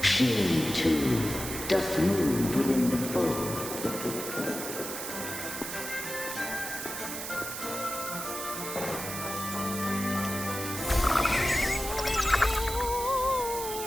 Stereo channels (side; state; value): right; noise; hiss, 6 dB below the sound